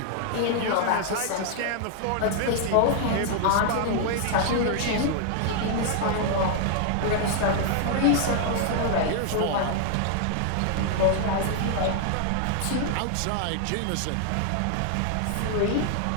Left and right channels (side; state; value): both; different; correlation 0.00